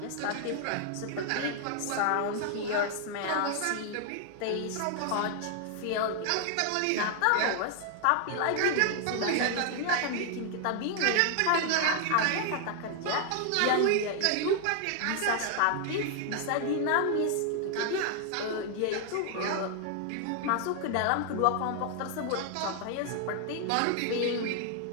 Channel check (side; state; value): both; different; correlation 0.00